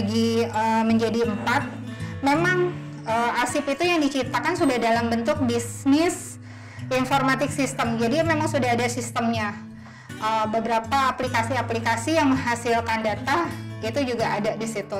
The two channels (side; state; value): both; identical; correlation 1.00